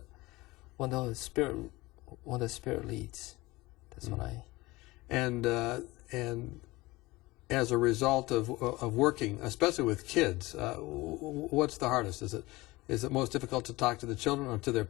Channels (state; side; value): quieter; right; 20.8 dB